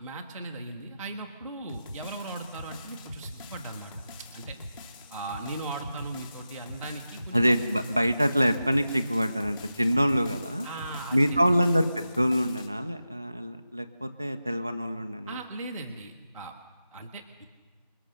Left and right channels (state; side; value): inverted; both; correlation -0.91